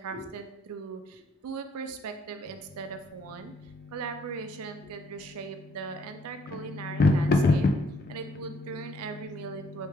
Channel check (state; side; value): normal; both; correlation 0.67